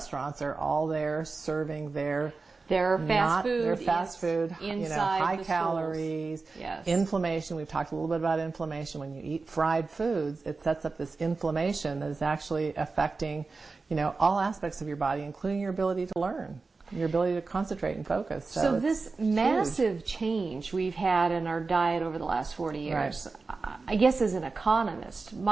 are all there serving their fast food, high calories, inflammation. We've talked a little bit about inflammation. When you eat fried foods, it sets up this inflammation that is actually affecting, all aspects of your body, including your ability to learn, your ability to concentrate and focus. So this massive change we've had in our diet over the last 40 years, I guess as an economist,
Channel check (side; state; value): left; quieter; 4.1 dB